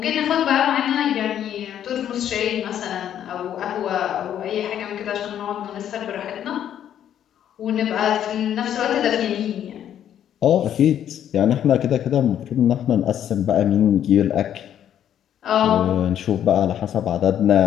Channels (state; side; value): quieter; right; 10.2 dB